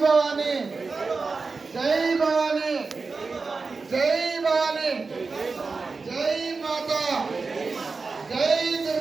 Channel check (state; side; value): quieter; left; 4.3 dB